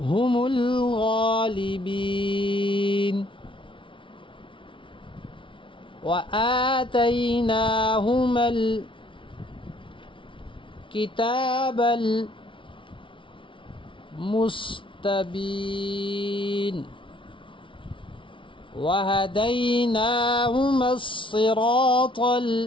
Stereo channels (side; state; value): right; late; 0.25 ms